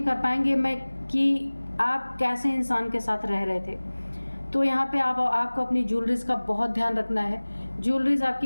कर पाएंगे कि आप कैसे इंसान के साथ रह रहे थे। तो यहाँ पे आपको अपनी ज्वेलरीज का बहुत ध्यान रखना है। ज्वेलरीज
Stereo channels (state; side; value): inverted; both; correlation -1.00